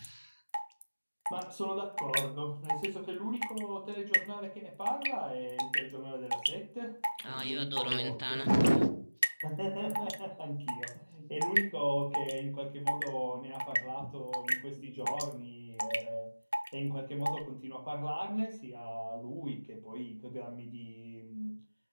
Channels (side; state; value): both; inverted; correlation -1.00